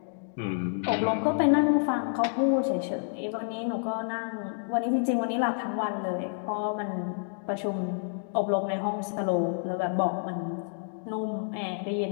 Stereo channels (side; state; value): right; silent; digital silence